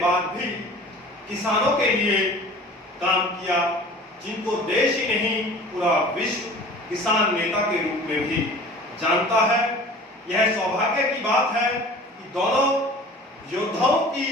भी किसानों के लिए काम किया, जिनको देश ही नहीं पूरा विश्व किसान नेता के रूप में भी जानता है। यह सौभाग्य की बात है कि दोनों योद्धाओं की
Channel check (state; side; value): normal; both; correlation 0.43